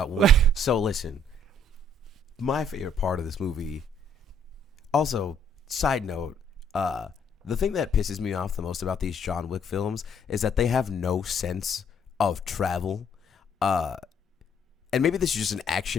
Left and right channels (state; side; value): normal; both; correlation 0.64